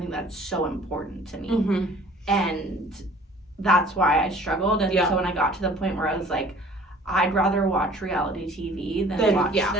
that's so important to me. And that's why I struggled. And so when I got to the point where I was like, I'd rather watch reality TV than watch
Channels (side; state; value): both; normal; correlation 0.51